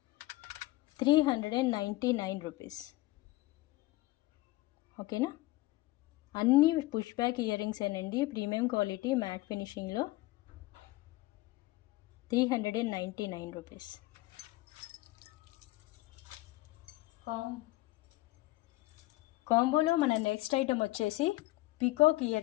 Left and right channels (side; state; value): right; quieter; 19.1 dB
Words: 399 రూపీస్. ఓకేనా, అన్నీ పుష్ బ్యాక్ ఇయర్ రింగ్స్ ఏనండి, ప్రీమియం క్వాలిటీ మ్యాట్ ఫినిషింగ్లో. 399 రూపీస్. కాంబోలో మన నెక్స్ట్ ఐటమ్ వచ్చేసి పికాక్